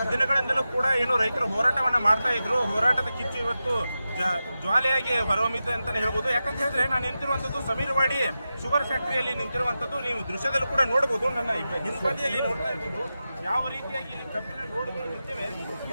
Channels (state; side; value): inverted; both; correlation -0.92